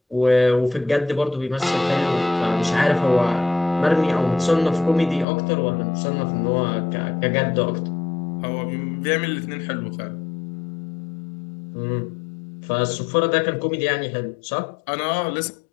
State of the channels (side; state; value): right; drops out; at 5.2 s